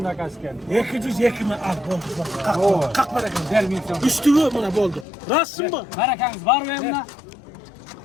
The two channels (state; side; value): drops out; right; at 5.1 s